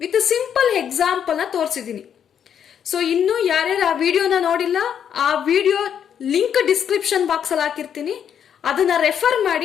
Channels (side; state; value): right; quieter; 8.6 dB